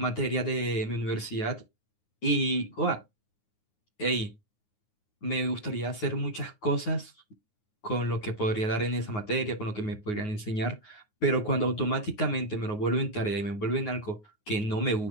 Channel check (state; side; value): late; right; 9.5 ms